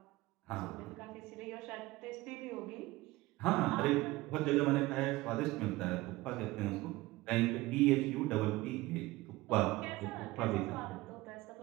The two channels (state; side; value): quieter; left; 19.4 dB